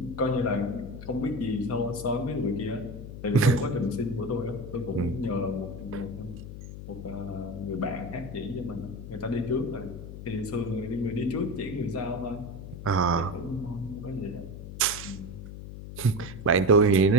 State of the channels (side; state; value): left; noise; hum, 11 dB below the sound